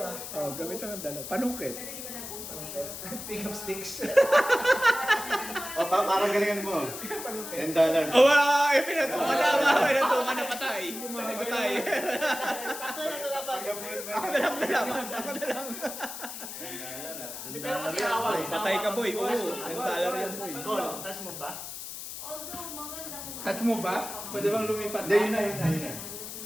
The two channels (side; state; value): left; noise; hiss, 9 dB below the sound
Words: Oh, gamitan ng dalawa. Panungkit. Pick up sticks. O, parang galingan mo. $10. Oh, pinatungan na. Pinatungan na patay. Patay. Sakto lang nalaban. Ako na lang nalaman. Ako na lang. Hindi, pero kasi away. Patay ka, boy. Oo. $10 yan, boy. Goal. Touch mo ba? Although maganda kung Touch mo ba? Pwede bang lumipat? Hindi, yun na, yun na, yun na.